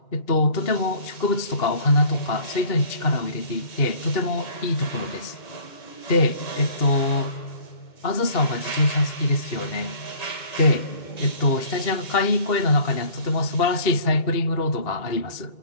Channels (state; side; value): late; right; 2.7 ms